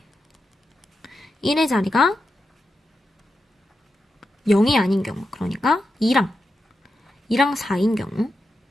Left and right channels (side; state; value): both; normal; correlation 0.88